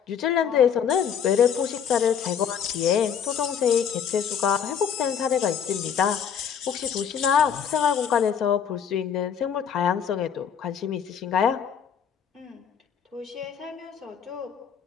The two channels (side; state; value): right; quieter; 7.8 dB